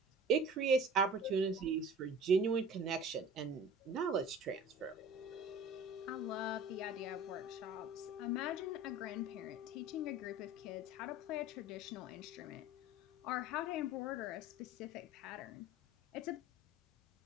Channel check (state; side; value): normal; both; correlation 0.41